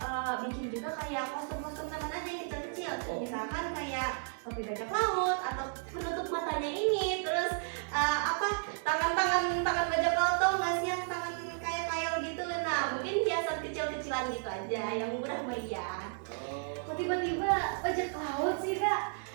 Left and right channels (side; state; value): left; silent; 56 dB below the other